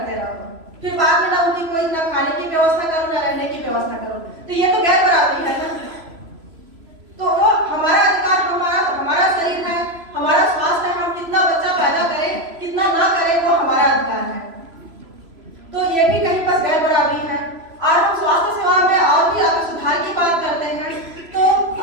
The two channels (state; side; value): late; left; 3.0 ms